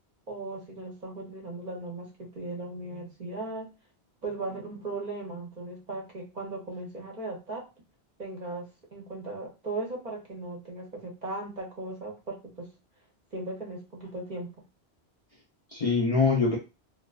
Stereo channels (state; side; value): normal; both; correlation 0.07